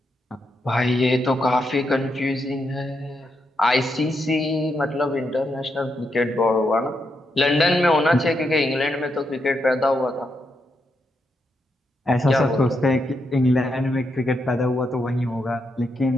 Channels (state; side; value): normal; both; correlation 0.82